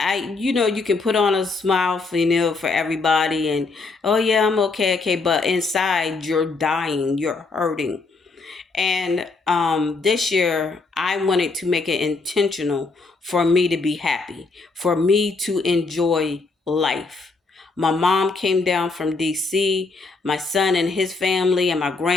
can put on a smile for for everybody, and oh yeah, I'm okay, but inside you're dying, you're hurting. And this year I wanted to make it intentional for me to be happy, for me to enjoy life. My mom came down from DC, my son and his family and my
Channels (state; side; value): quieter; right; 3.9 dB